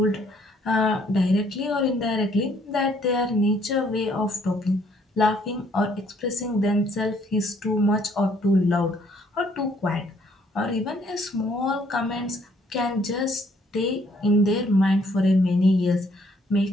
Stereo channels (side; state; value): both; normal; correlation 0.65